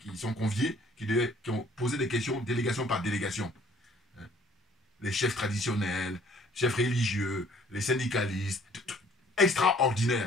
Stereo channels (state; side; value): normal; both; correlation 0.58